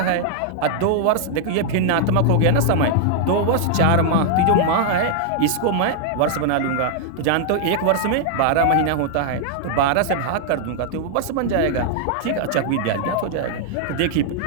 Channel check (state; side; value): different; both; correlation -0.01